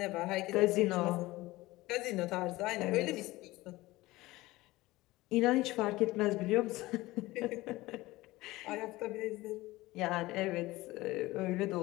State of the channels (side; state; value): right; quieter; 19.1 dB